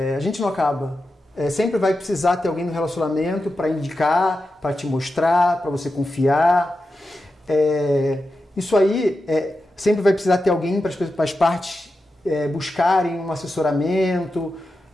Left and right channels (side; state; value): both; normal; correlation 0.90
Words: gente não acaba. Sempre vai precisar ter alguém no relacionamento para indicar, para te mostrar, para você confiar. Isso aí, sempre vai precisar ter alguém para as partes buscarem um assessoramento.